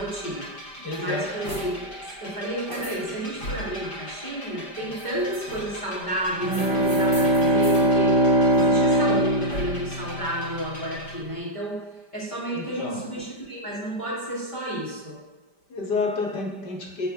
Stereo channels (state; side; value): late; right; 5.1 ms